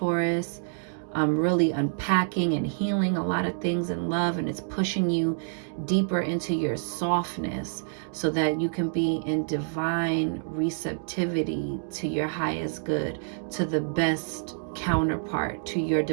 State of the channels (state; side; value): silent; left; digital silence